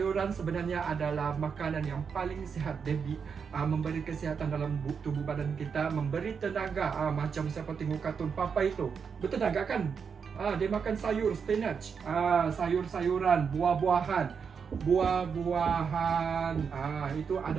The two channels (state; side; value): quieter; left; 6.3 dB